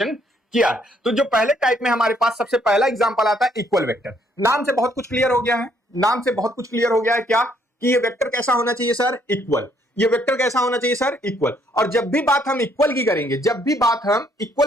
किया। तो जो पहले टाइप में हमारे पास सबसे पहला एग्जांपल आता है इक्वल वेक्टर। नाम से बहुत कुछ क्लियर हो गया है, नाम से बहुत कुछ क्लियर हो गया है क्या, कि ये वेक्टर कैसा होना चाहिए सर, इक्वल। ये वेक्टर कैसा होना चाहिए सर, इक्वल। और जब भी बात हम इक्वल की करेंगे, जब भी बात हम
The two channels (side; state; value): both; normal; correlation 0.68